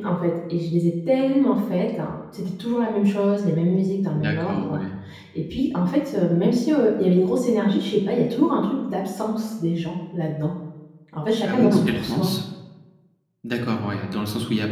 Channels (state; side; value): identical; both; correlation 1.00